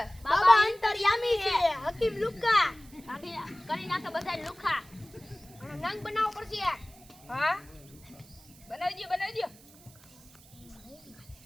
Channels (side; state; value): right; noise; hiss, 24 dB below the sound